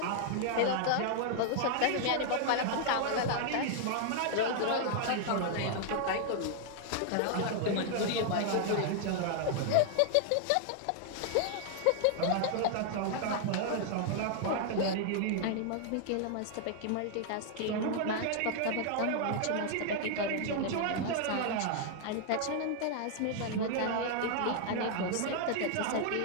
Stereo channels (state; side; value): different; both; correlation 0.00